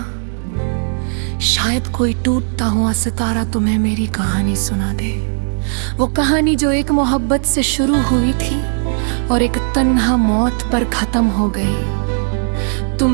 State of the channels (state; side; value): silent; left; digital silence